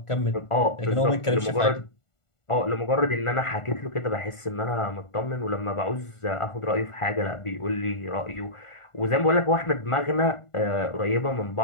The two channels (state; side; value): late; right; 1.5 ms